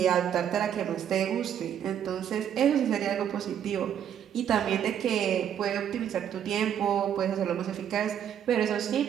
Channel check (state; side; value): quieter; left; 9.3 dB